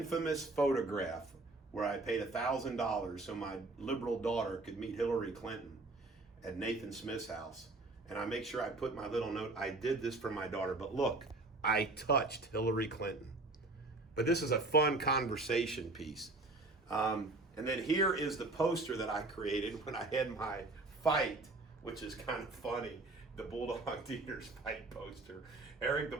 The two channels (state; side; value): quieter; left; 3.1 dB